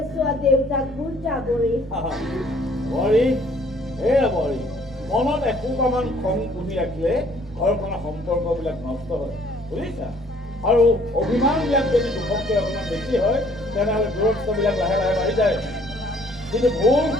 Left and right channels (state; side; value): normal; both; correlation 0.60